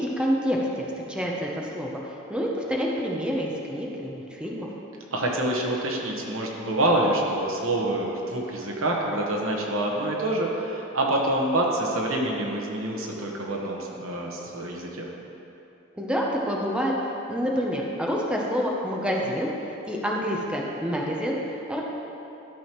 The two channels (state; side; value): normal; both; correlation 0.33